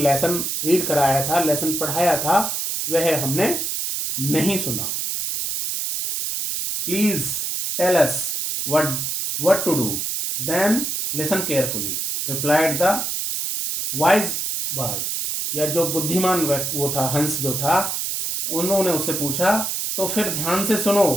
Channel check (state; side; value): noise; right; hiss, 2 dB below the sound